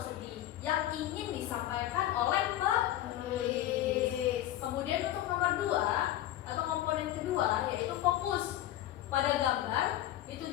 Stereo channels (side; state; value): right; quieter; 13.4 dB